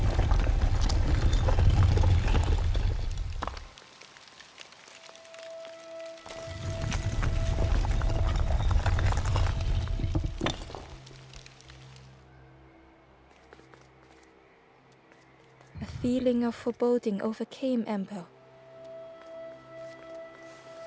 A feeling of foreboding overcame Ember.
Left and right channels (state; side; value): identical; both; correlation 1.00